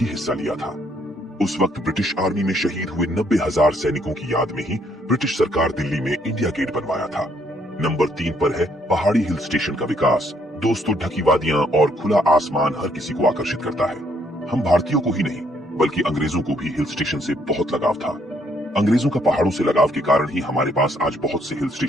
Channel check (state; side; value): normal; both; correlation 0.69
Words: हिस्सा लिया था। उस वक्त ब्रिटिश आर्मी में शहीद हुए 90,000 सैनिकों की याद में ही ब्रिटिश सरकार दिल्ली में इंडिया गेट बनवाया था। नंबर 3 पर है पहाड़ी हिल स्टेशन का विकास। दोस्तों, ढकी वादियां और खुला आसमान हर किसी को आकर्षित करता है। हम भारतीयों को ही नहीं, बल्कि अंग्रेजों को भी हिल स्टेशन से बहुत लगाव था। अंग्रेजों का पहाड़ों से लगाव के कारण ही हमारे पास आज बहुत से हिल